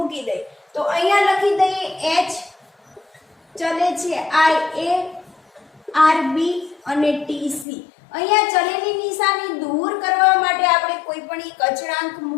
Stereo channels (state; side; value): drops out; right; at 7.7 s